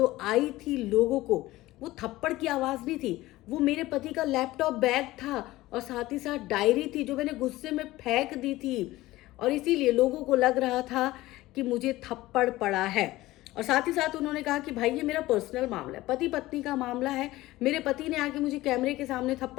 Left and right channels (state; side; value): quieter; right; 17.6 dB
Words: आई थी लोगों को, वो थप्पड़ की आवाज़ नहीं थी, वो मेरे पति का लैपटॉप बैग था और साथ ही साथ डायरी थी जो मैंने गुस्से में फेंक दी थी और इसीलिए लोगों को लग रहा था कि मुझे थप्पड़ पड़ा है। और साथ ही साथ उन्होंने कहा कि भाई ये मेरा पर्सनल मामला है, पति पत्नी का मामला है, मेरे पति ने आके मुझे कैमरे के सामने